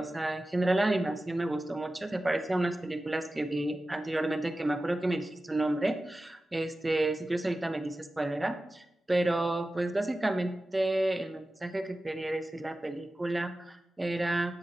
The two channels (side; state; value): both; normal; correlation 0.95